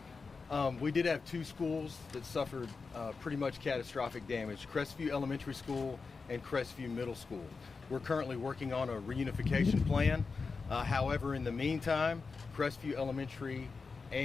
We did have 2 schools that suffered pretty much catastrophic damage, Crestview Elementary School and Crestview Middle School. We're currently working on a reunification plan. However, in the meantime, Crestview Elementary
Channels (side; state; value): right; quieter; 4.6 dB